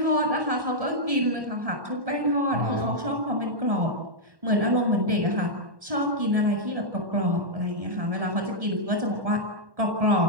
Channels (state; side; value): late; left; 1.1 ms